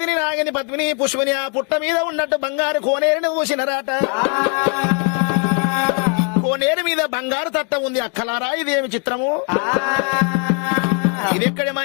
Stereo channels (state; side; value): quieter; right; 36.1 dB